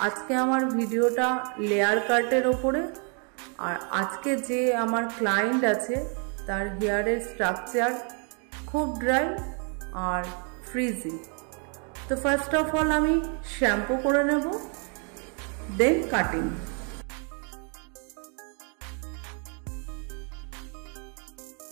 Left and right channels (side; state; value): left; quieter; 39.6 dB